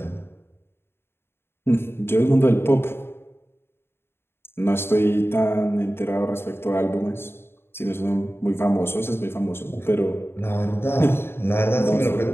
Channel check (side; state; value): right; late; 0.11 ms